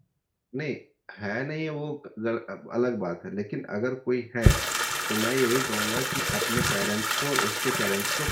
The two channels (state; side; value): identical; both; correlation 1.00